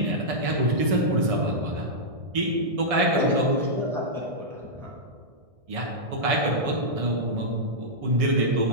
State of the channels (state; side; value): late; left; 1.6 ms